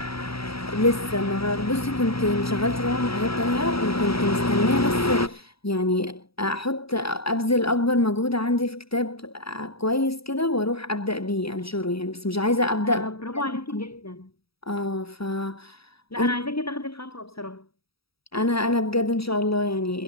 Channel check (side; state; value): right; late; 0.76 ms